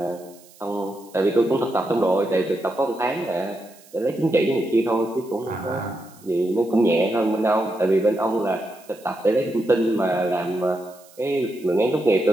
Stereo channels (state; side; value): noise; right; hiss, 25 dB below the sound